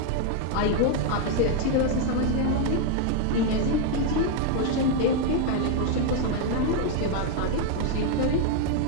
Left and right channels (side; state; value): both; different; correlation 0.01